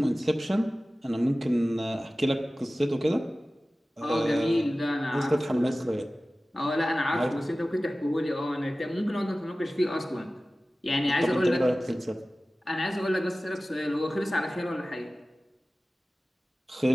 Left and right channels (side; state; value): both; normal; correlation 0.97